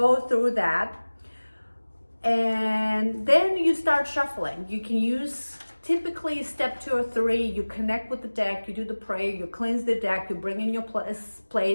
through that. And then you start shuffling. You can use typically step 2 or 3, you connect with the deck, you do the prayer, you cleanse the deck, you bring in your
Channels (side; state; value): both; inverted; correlation -1.00